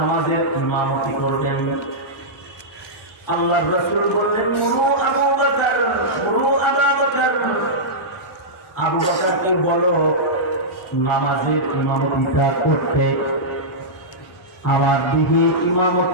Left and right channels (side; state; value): both; normal; correlation -0.12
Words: ইমামতি করবেন। আল্লাহর রাসূল বললেন, মুরু আবু বকর, মুরু আবু বকর, আবু বকরকে বলো নামাজের ইমামতিটা করতে। আমার দিকে